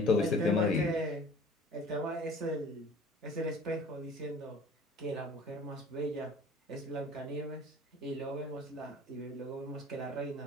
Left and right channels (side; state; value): both; normal; correlation 0.47